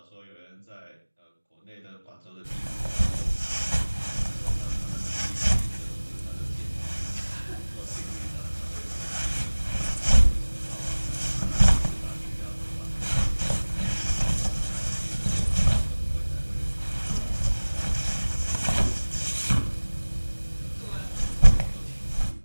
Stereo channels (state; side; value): inverted; both; correlation -1.00